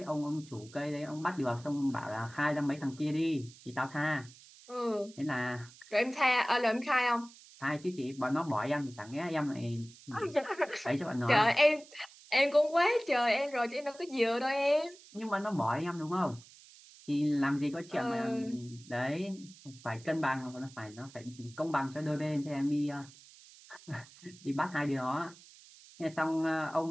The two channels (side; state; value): right; noise; hiss, 22 dB below the sound